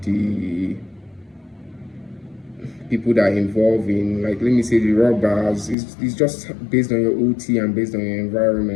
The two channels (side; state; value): right; drops out; at 5.8 s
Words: the people that are involved in, like, let me say, the robbers. It's just based on your OT and based on your